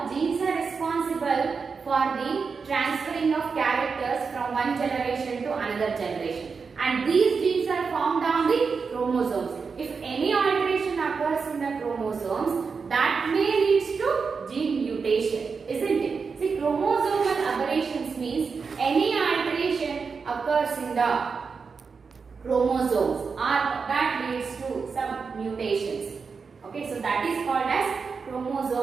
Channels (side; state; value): left; quieter; 5.2 dB